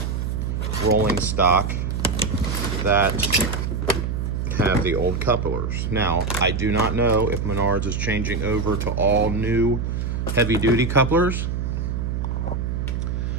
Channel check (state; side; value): noise; right; hum, 2 dB below the sound